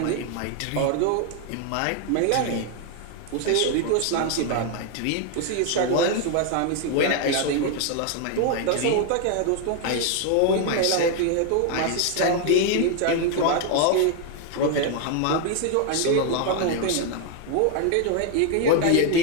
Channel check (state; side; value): different; both; correlation 0.00